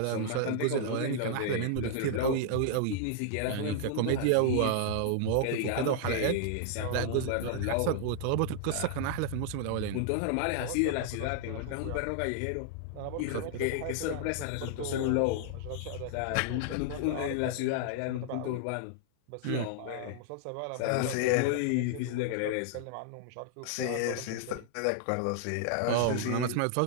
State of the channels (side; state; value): both; different; correlation -0.01